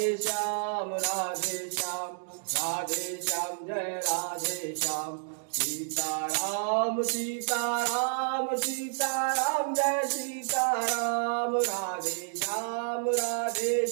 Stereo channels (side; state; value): left; silent; digital silence